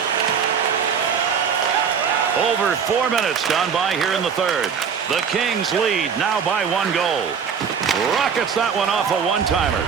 Over 4 minutes gone by here in the third. The Kings lead now by 1 goal. Rockets that one off a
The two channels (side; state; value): left; quieter; 6.8 dB